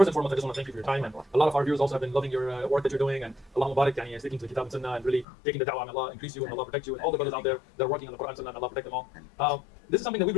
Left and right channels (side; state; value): right; drops out; at 5.2 s